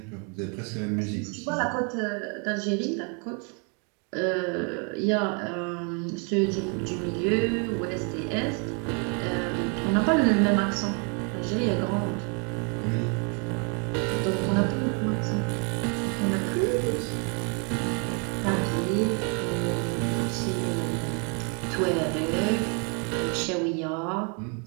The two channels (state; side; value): quieter; left; 37.2 dB